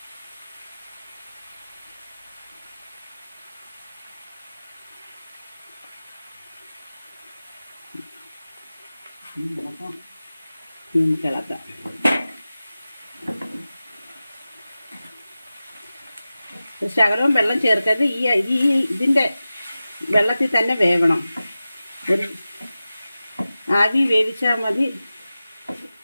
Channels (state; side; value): inverted; both; correlation -0.95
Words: ഇളക്കാം. ശകലവും വെള്ളം ചേർക്കരുത്. ഇതിൻ്റെ വെള്ളത്തിൽ തന്നെ വേവണം. ഒരു ആവി വേവിച്ചാൽ മതി.